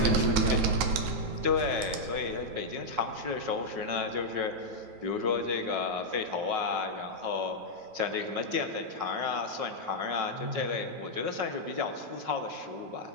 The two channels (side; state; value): left; late; 9.2 ms